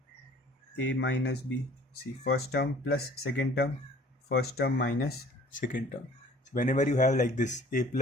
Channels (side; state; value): both; normal; correlation 0.51